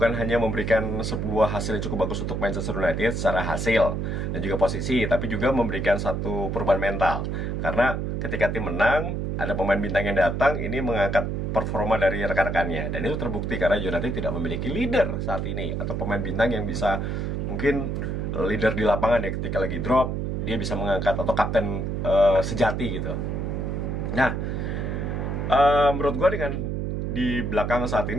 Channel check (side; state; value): right; noise; hum, 1 dB below the sound